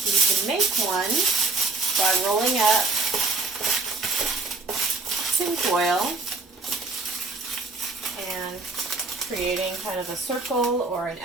you can make one by rolling up tin foil and creating kind of a circle or an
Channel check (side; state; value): left; quieter; 3.7 dB